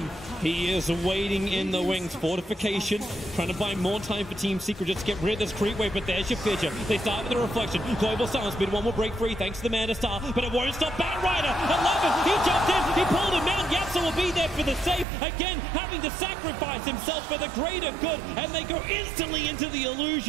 he is waiting in the wings. Fortification, trying to buy more time for Team Secret just to get rid of this creep wave, but there's your Fidget. They start with the reflection. Global Silence, mid one will break free thanks to the Mana Star, but it won't stop Batrider. 11, he jumped in, he pulled him out. Yapzor will be there for the save. Again, having to sacrifice himself for the greater good, and they go instantly into the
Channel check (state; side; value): drops out; left; at 15.1 s